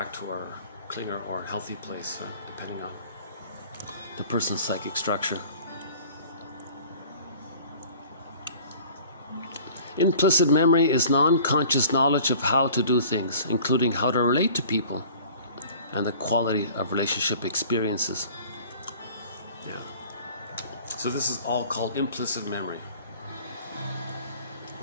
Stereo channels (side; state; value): both; inverted; correlation -0.47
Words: to our clinger or healthy place, depending on the person's psychic structure. Implicit memory is non-conscious knowledge of how to do things, including how to relate to people and the quality of relationship experiences. Yeah. So this is all called implicit memory.